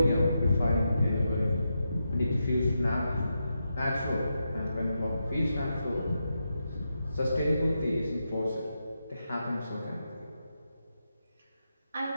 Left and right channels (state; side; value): inverted; both; correlation -0.86